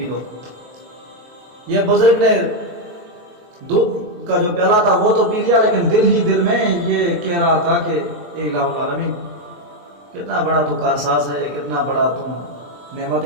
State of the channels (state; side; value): late; left; 23 ms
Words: لو۔ یہ بزرگ نے دودھ کا جو پیالہ تھا وہ تو پی لیا، لیکن دل ہی دل میں یہ کہہ رہا تھا کہ اے الہ العالمین، کتنا بڑا تو کارساز ہے، کتنا بڑا تم نعمت